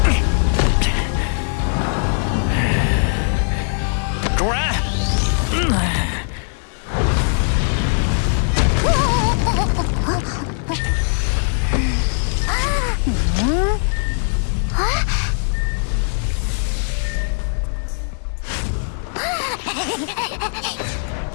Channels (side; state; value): right; silent; 62 dB below the other